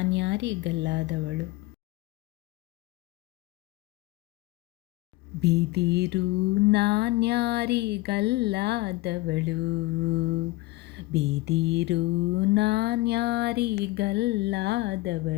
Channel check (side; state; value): right; quieter; 19.5 dB